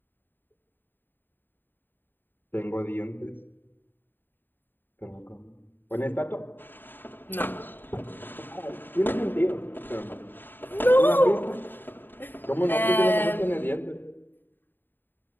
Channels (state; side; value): late; right; 0.094 ms